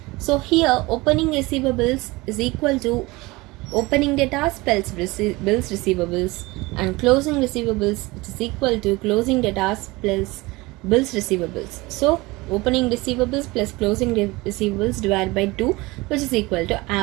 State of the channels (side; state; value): left; quieter; 22.3 dB